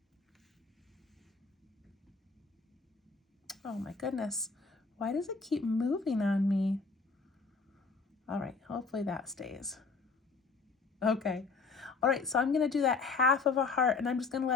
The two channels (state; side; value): quieter; right; 4.4 dB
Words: Oh my goodness. Why does it keep moving on me? All right, hopefully that stays. Okay. All right, so I'm gonna do that half of a heart and I'm just gonna